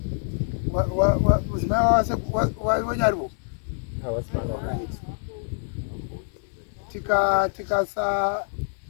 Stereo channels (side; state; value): right; silent; digital silence